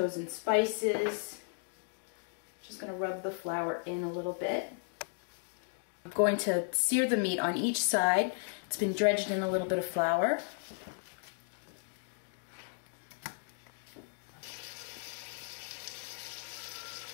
spices. Just going to rub the flour in a little bit. I'm going to sear the meat on each side. It's been dredged in a little bit of flour.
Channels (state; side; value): silent; right; 54 dB below the other